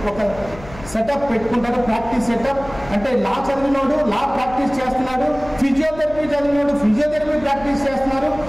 ఒక సెటప్ పెట్టుకుంటారు, ప్రాక్టీస్ సెటప్. అంటే లా చదివినోడు లా ప్రాక్టీస్ చేస్తున్నాడు, ఫిజియోథెరపీ చదివినోడు ఫిజియోథెరపీ ప్రాక్టీస్ చేస్తున్నారు,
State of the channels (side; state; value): left; noise; hum, 17 dB below the sound